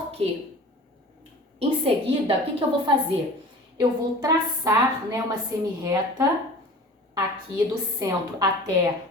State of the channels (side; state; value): both; normal; correlation 0.41